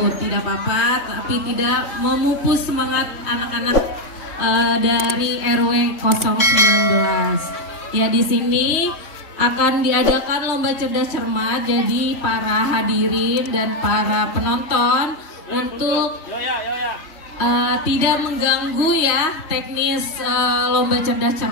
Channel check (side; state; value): right; late; 3.6 ms